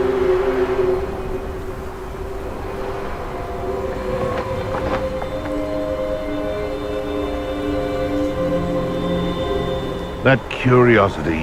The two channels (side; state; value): both; identical; correlation 1.00